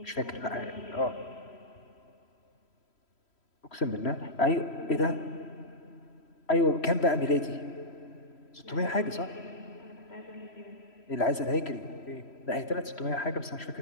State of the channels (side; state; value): right; late; 3.1 ms